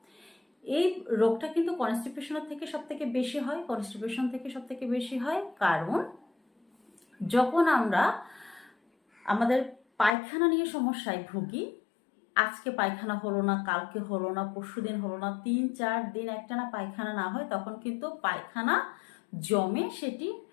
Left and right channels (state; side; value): drops out; right; at 10.2 s